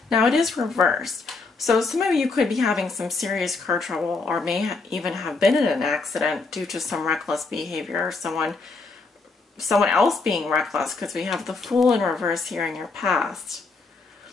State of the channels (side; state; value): right; quieter; 4.0 dB